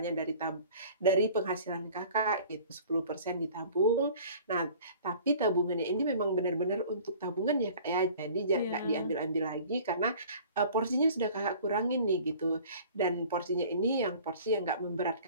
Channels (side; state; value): both; inverted; correlation -0.47